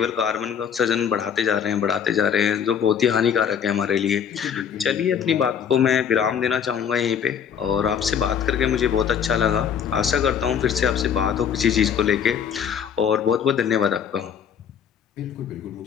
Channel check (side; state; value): right; quieter; 7.9 dB